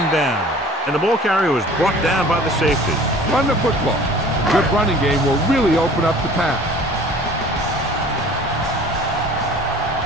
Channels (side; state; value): both; normal; correlation 0.47